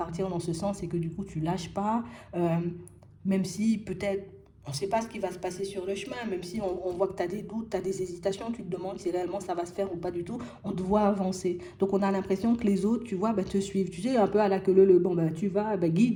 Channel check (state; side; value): identical; both; correlation 1.00